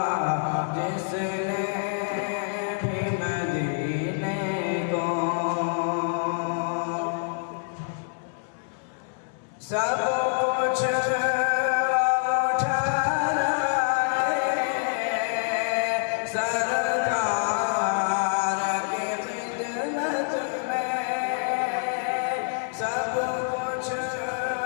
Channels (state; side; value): silent; right; digital silence